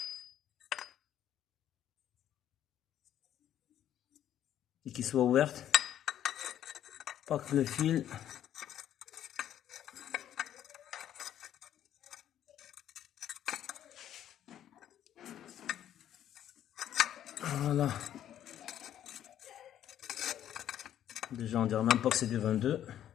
Et qui soit ouverte. Pas que le fil. Voilà. Déjà on dirait même pas que c'est du 22.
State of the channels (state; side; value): quieter; right; 11.0 dB